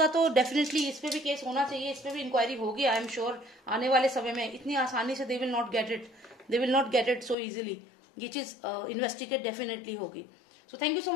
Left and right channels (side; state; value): right; drops out; at 7.4 s